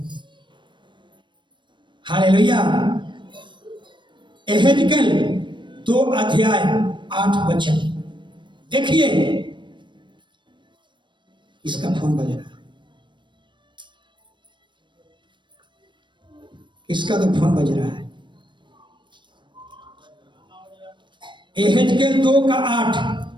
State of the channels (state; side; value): late; left; 0.23 ms